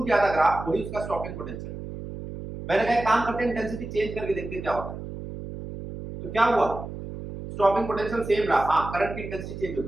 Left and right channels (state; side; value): noise; right; hum, 9 dB below the sound